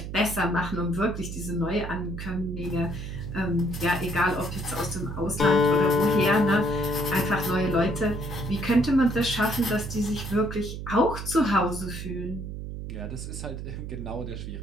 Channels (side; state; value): right; noise; hum, 7 dB below the sound